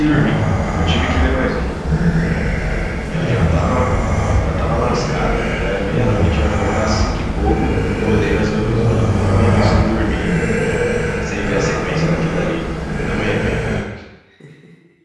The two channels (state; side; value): identical; both; correlation 1.00